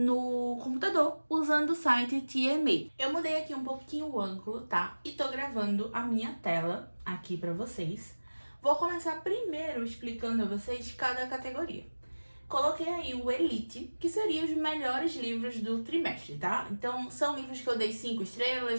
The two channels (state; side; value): inverted; both; correlation -1.00